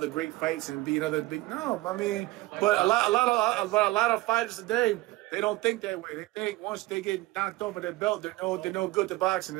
great fights and be another big. No, I mean, but a lot of fighters today, they don't think that way. They think once they get knocked off of their belt, they're no good to boxing,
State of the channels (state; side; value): quieter; left; 19.4 dB